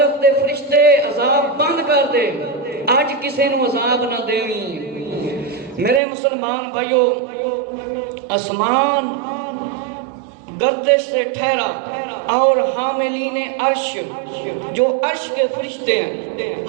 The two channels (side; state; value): left; drops out; at 6.0 s